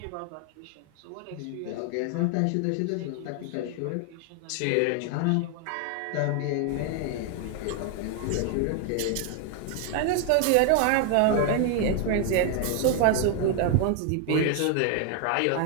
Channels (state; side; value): different; both; correlation 0.00